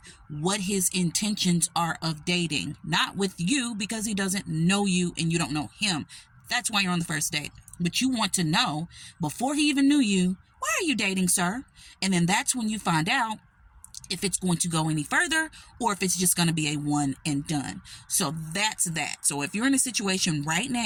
what his intentions are of dating, not with you because he doesn't know you and you don't know him. That's why you're on the first date. But you want to know before he even knew you, why are you dating, sir? And then that's when you find out if it's going to go any further or if it's just going to be a one and done. So that's that. So if you're in a situation right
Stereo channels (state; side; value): identical; both; correlation 1.00